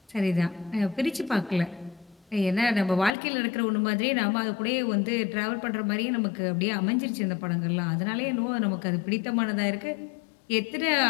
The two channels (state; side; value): drops out; right; at 3.1 s